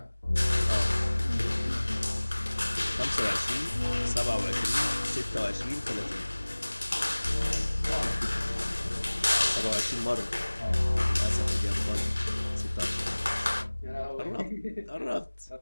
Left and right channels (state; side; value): inverted; both; correlation -1.00